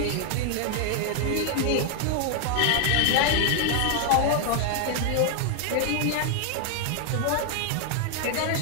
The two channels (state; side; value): different; both; correlation 0.00